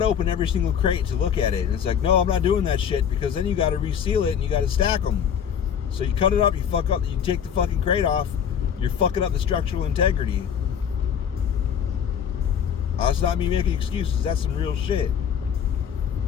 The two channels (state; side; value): quieter; right; 8.0 dB